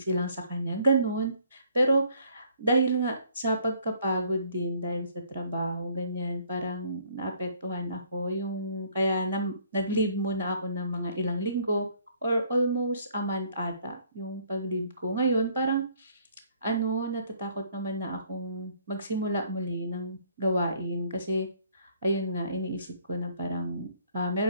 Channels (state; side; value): inverted; both; correlation -0.62